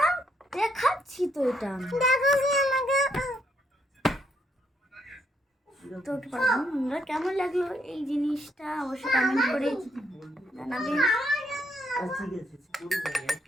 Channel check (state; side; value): normal; both; correlation 0.74